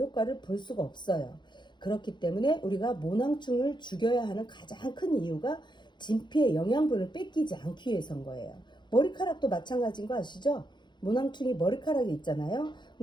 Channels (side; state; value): right; late; 0.22 ms